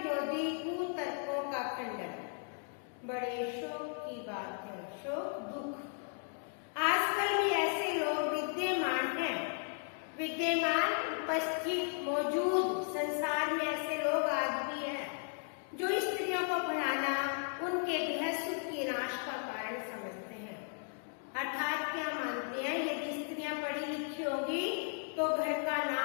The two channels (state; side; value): silent; right; 54 dB below the other